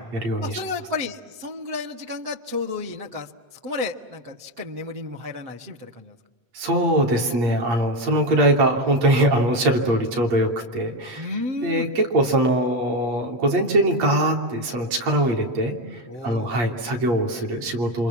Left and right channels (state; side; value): late; left; 8.5 ms